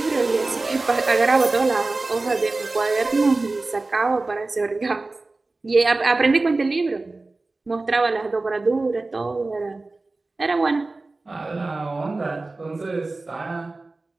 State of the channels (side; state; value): left; quieter; 3.3 dB